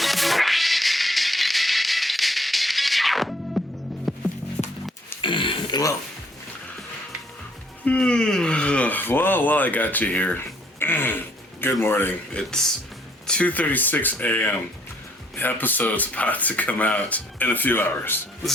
Well, I got you here. Good morning. It's 2:36 a.m. The episode's about to come out in a few hours.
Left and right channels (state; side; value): normal; both; correlation 0.64